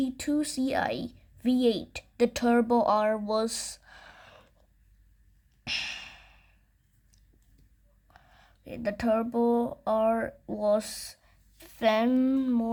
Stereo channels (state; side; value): identical; both; correlation 1.00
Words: Ci V8. The Turbo R was